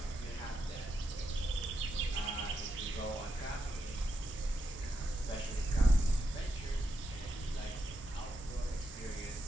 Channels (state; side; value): normal; both; correlation 0.84